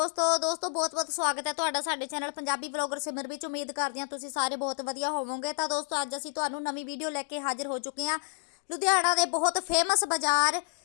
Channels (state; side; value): silent; right; digital silence